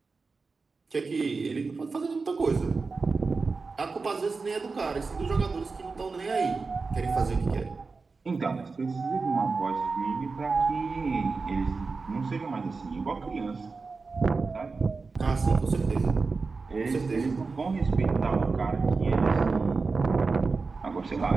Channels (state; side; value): quieter; left; 4.3 dB